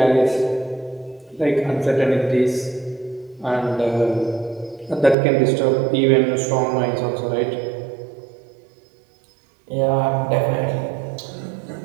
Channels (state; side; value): drops out; left; at 5.2 s